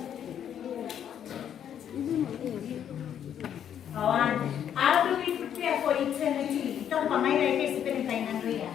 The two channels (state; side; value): quieter; right; 9.4 dB